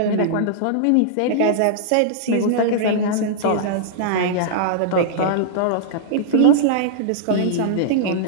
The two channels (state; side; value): different; both; correlation -0.02